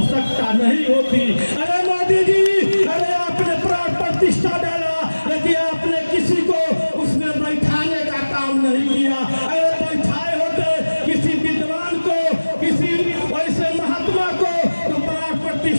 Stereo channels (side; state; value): both; inverted; correlation -1.00